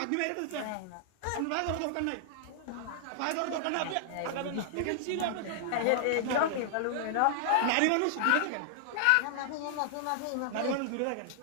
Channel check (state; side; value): different; both; correlation -0.01